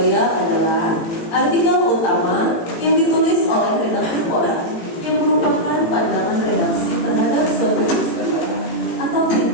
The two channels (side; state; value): right; late; 18 ms